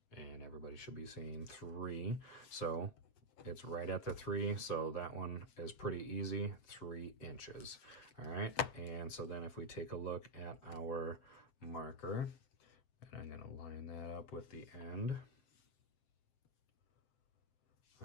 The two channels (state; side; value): late; right; 7.8 ms